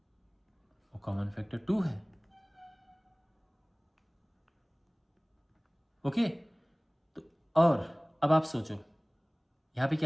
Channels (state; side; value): identical; both; correlation 1.00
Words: वो कॉमन फैक्टर 2 है। ओके, तो और अब आप सोचो, यहां पे